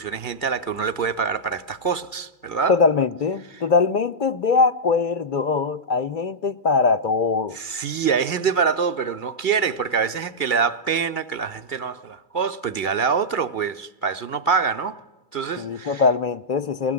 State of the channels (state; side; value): late; right; 2.3 ms